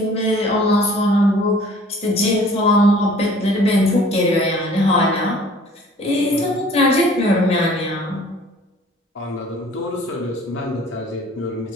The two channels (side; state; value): both; normal; correlation 0.51